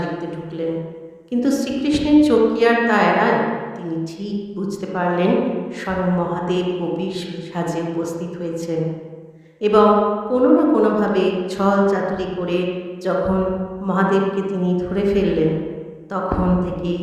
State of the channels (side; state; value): both; identical; correlation 1.00